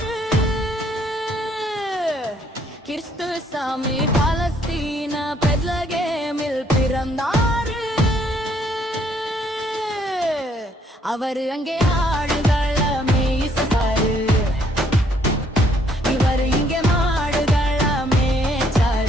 கிறிஸ்துசாமி பாலஸ்தீன பெத்லகேமில் பிறந்தாரு. அவரு அங்கே ஆடுகளை மேய்ச்சாரு. இவரு இங்கே மாடுகளை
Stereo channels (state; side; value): normal; both; correlation 0.67